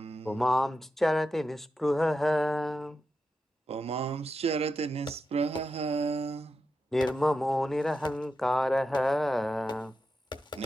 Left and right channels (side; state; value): both; normal; correlation 0.88